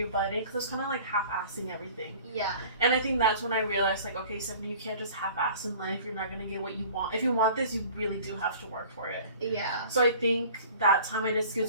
butt in, because I was kind of, like, half-assing everything. Yeah. And I think that's when I realized, like, okay, Stephanie, you can't just half-ass in life. You're not going to get what you want. If you want this, you really do have to work for it. Yeah. So I think that time I did Skills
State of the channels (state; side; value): inverted; both; correlation -0.47